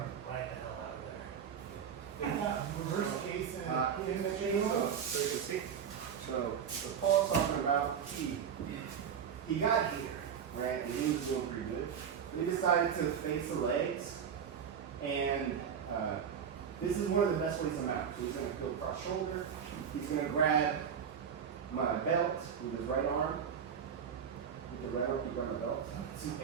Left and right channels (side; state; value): left; quieter; 7.7 dB